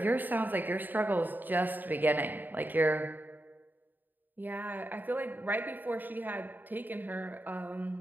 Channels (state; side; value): late; left; 0.089 ms